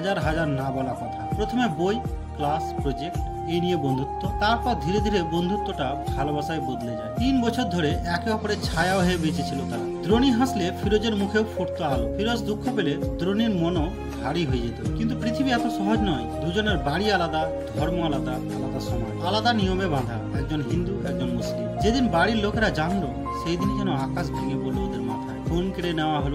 হাজার না বলা কথা। প্রথমে বই, ক্লাস, প্রজেক্ট, এই নিয়ে বন্ধুত্ব, তারপর ধীরে ধীরে বন্ধুত্বটা ভালোবাসায় বদলে যায়। 3 বছর ধরে একে অপরের ছায়া হয়ে বেঁচেছিল তারা। দ্রোণী হাসলে ফিরোজের মুখেও ফুটতো আলো, ফিরোজ দুঃখ পেলে দ্রোণীর মনও ভারী হয়ে যেত। কিন্তু পৃথিবী এত সহজ নয়। দুজনের বাড়ি আলাদা, ধর্ম আলাদা, আলাদা সমাজ, আলাদা নিয়মে বাঁধা, একজন হিন্দু একজন মুসলিম। যেদিন বাড়ির লোকেরা জানলো সেই দিনই যেন আকাশ ভেঙে পড়লো ওদের মাথায়। ফোন কেড়ে নেওয়া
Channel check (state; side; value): identical; both; correlation 1.00